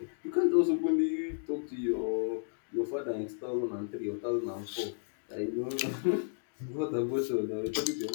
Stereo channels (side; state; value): right; silent; digital silence